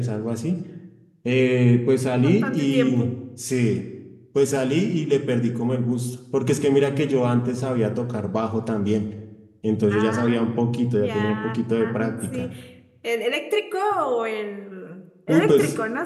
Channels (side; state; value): both; identical; correlation 1.00